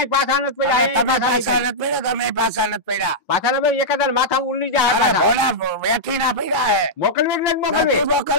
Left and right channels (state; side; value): normal; both; correlation -0.10